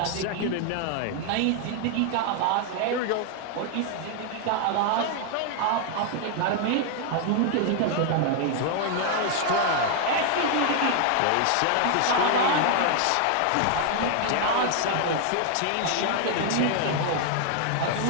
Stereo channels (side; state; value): both; different; correlation 0.00